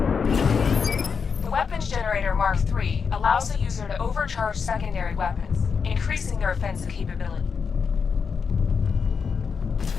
The weapons generator Mark III allows the user to overcharge secondary weapons, increasing their offensive capability.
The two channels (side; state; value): right; quieter; 5.9 dB